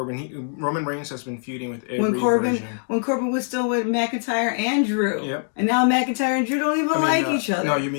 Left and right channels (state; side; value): silent; right; 63 dB below the other